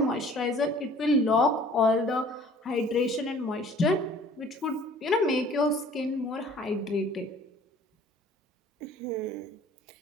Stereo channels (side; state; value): both; normal; correlation 0.51